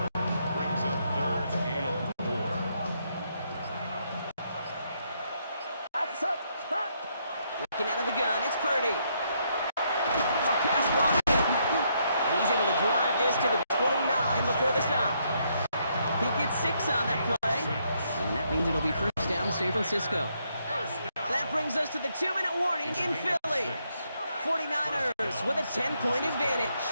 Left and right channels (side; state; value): both; inverted; correlation -0.75